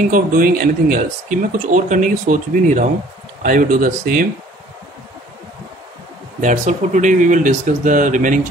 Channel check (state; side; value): normal; both; correlation 0.54